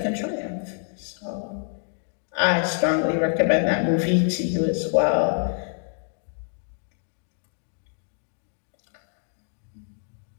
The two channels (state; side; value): silent; right; 61 dB below the other